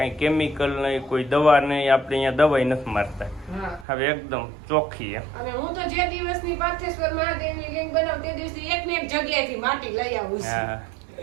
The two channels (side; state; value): left; drops out; at 3.9 s